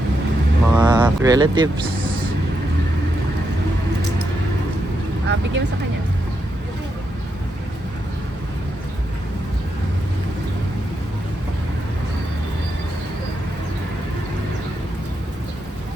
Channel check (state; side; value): normal; both; correlation 0.83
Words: mga relatives. Bigyan mo sa kanya.